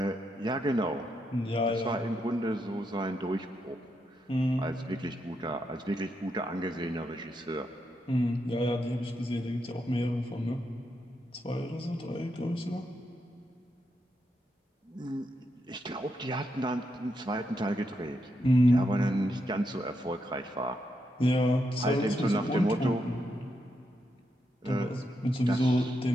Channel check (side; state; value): both; normal; correlation 0.82